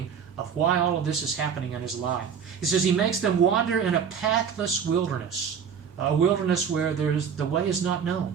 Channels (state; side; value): quieter; left; 7.2 dB